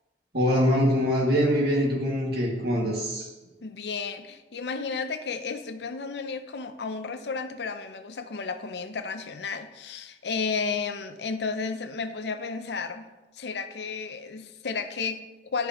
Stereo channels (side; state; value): both; normal; correlation 0.37